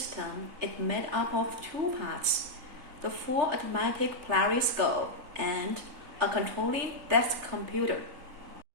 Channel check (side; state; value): left; late; 3.4 ms